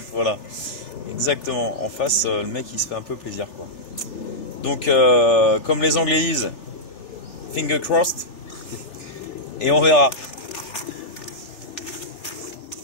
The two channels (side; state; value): right; late; 3.4 ms